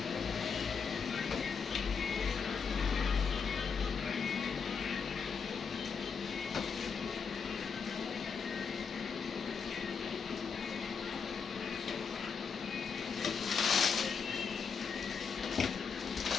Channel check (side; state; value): right; quieter; 5.9 dB